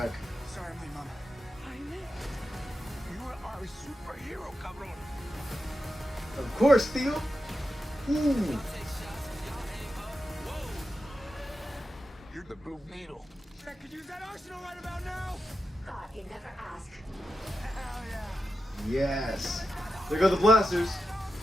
Sorry, my mama. You are our superhero, cabron. Of course, Theo. Ooh. You're the Blue Beetle. I could use that arsenal right about now. Thought you'd never ask. Hell yeah. Yes. There go the blasters.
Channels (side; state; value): both; normal; correlation 0.89